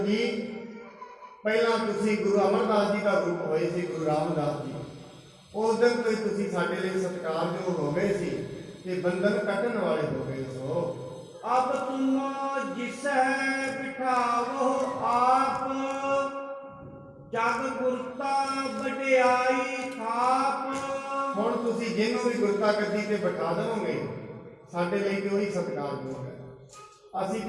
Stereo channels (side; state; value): both; identical; correlation 1.00